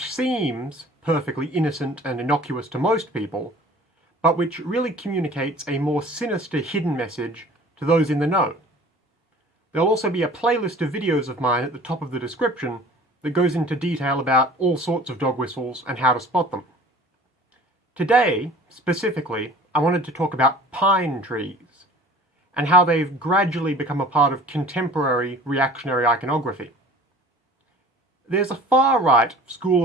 seems perfectly innocent and innocuous to most people, but which really communicates a more sinister hidden message to those in the know. There'll also be a playlist of videos of mine at the top of the description that goes into detail about all sorts of dog whistles and how to spot them. Today, specifically, I wanted to talk about pine trees and how they've gradually become a part of contemporary reactionary iconography. There's a far-right school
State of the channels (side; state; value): both; normal; correlation 0.46